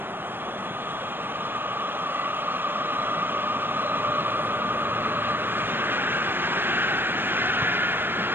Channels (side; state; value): left; late; 0.098 ms